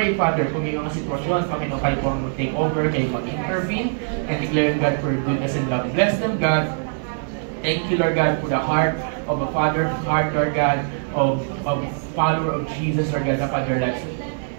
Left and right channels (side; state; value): left; silent; digital silence